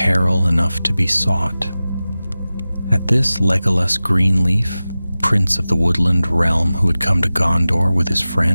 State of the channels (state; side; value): inverted; both; correlation -0.96